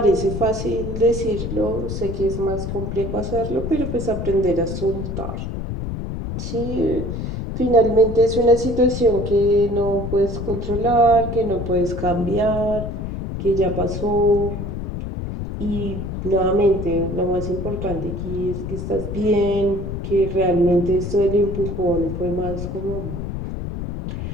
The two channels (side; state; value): left; noise; rumble, 5 dB below the sound